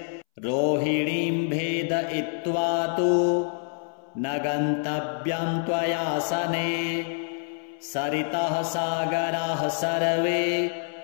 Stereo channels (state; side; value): silent; right; 61 dB below the other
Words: रोहिणीं भेदयित्वा तु न गन्तव्यं त्वयासने सरितः सागराः सर्वे